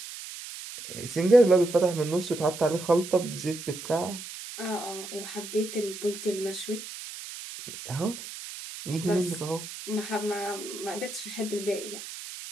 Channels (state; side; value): noise; right; hiss, 11 dB below the sound